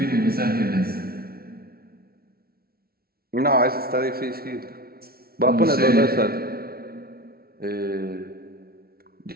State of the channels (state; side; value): late; left; 0.44 ms